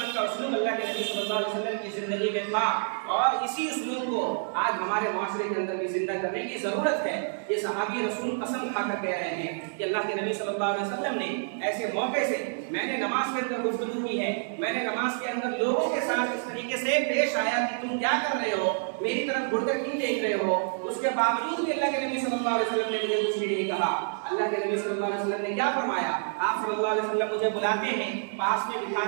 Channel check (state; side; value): silent; left; 59 dB below the other